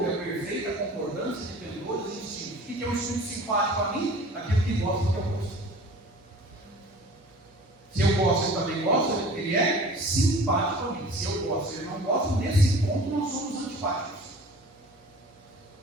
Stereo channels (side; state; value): both; normal; correlation 0.44